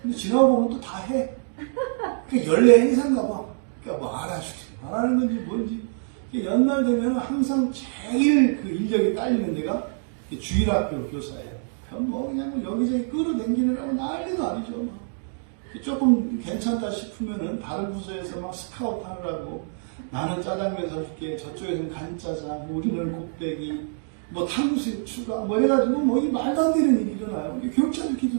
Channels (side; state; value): left; silent; digital silence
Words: 근데 지나고 보면 또 다 해. 그 연례 행사인가 봐. 그러니까 뭐 알아주지. 말하는 건지 뭔지. 연말 되면 항상 제일 그 인력이 딸리는 데가 주일학교 교사예요. 뭐 그냥 여기저기 끌어당기느라고 난리도 아니죠. 조금 괜찮다 싶으면은 다른 부서에서 막 스카우트 하느라고 나는 짜장면 사줄게, 저쪽에서는 간짜장, 우리는 곱빼기, 뭐 탕수육 추가, 뭐 이래가지고 뭐 이 말도 안 되는 일이 일어나요.